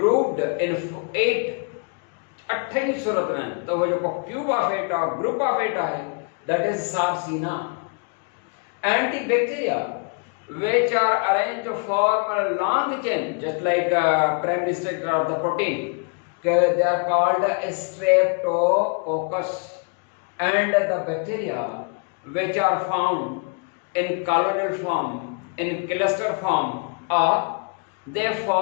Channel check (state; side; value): quieter; right; 38.5 dB